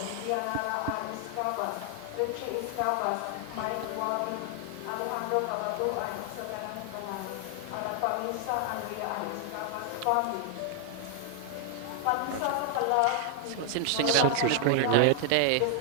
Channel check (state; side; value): different; both; correlation 0.00